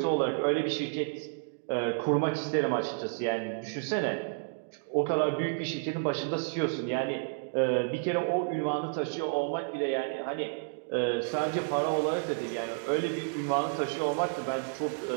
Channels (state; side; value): silent; left; digital silence